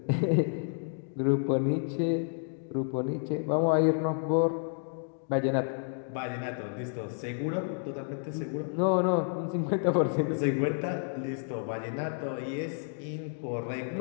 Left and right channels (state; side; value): silent; right; digital silence